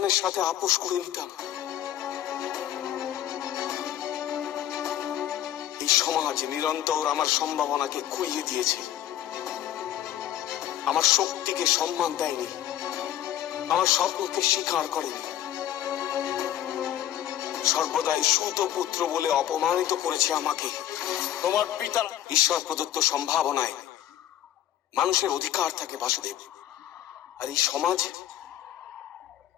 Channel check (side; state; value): right; quieter; 11.8 dB